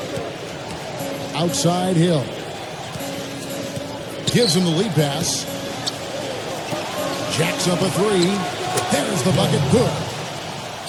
Outside Hill. Gives him the lead pass. Jacks up a three. There's the bucket. Good.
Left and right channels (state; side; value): identical; both; correlation 1.00